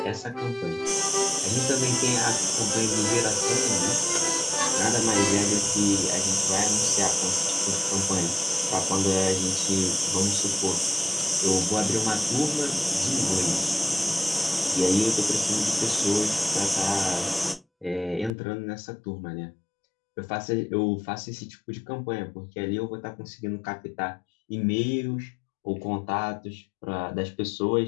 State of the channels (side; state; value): right; drops out; at 18.3 s